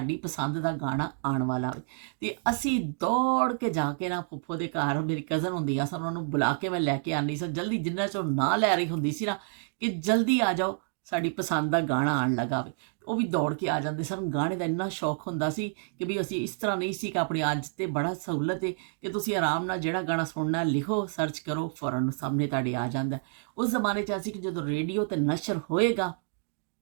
ਪਸੰਦ ਦਾ ਗਾਣਾ ਆਉਣ ਵਾਲਾ ਹੋਵੇ। ਤੇ ਅਸੀਂ ਦੌੜ ਕੇ ਜਾ ਕੇ ਨਾ ਫੁੱਫੋ ਦੇ ਘਰ, ਮੇਰੀ ਕਜ਼ਨ ਹੁੰਦੀ ਆ ਸਨ, ਉਹਨਾਂ ਨੂੰ ਬੁਲਾ ਕੇ ਮੈਂ ਲੈ ਕੇ ਆਉਂਦੀ ਸਾਂ ਜਲਦੀ, ਜਿੰਨਾ ਚਿਰ ਨਾ ਲੈ ਰਹੀ ਹੁੰਦੀ ਸੀ ਨਾ ਕਿ ਜਲਦੀ ਆ ਜਾਓ ਸਾਡੀ ਪਸੰਦ ਦਾ ਗਾਣਾ ਆਉਣ ਲੱਗਾ ਵੇ। ਉਹ ਵੀ ਦੌੜ ਕੇ ਆ ਜਾਂਦੇ ਸਨ। ਗਾਣੇ ਦਾ ਇੰਨਾ ਸ਼ੌਕ ਹੁੰਦਾ ਸੀ ਕਿ ਵੀ ਅਸੀਂ ਇਸ ਤਰ੍ਹਾਂ ਨਹੀਂ ਸੀ ਕਿ ਆਪਣੀ ਅੱਜ ਤੇ ਬੜਾ ਸਹੂਲਤ ਹੈ ਕਿ ਤੁਸੀਂ ਆਰਾਮ ਨਾਲ ਜਿਹੜਾ ਗਾਣਾ ਸੁਣਨਾ ਲਿਖੋ, ਸਰਚ ਕਰੋ, ਫੌਰਨ ਸਾਹਮਣੇ ਤੁਹਾਡੇ ਆ ਜਾਂਦਾ। ਉਸ ਜ਼ਮਾਨੇ 'ਚ ਅਸੀਂ ਕਿ ਜਦੋਂ ਰੇਡੀਓ 'ਤੇ ਨਸ਼ਰ ਹੋਏਗਾ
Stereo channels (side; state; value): left; silent; 59 dB below the other